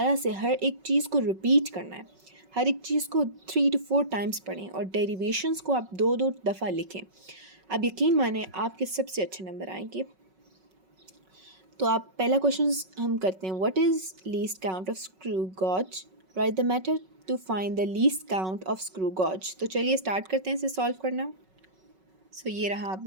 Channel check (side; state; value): left; late; 5.4 ms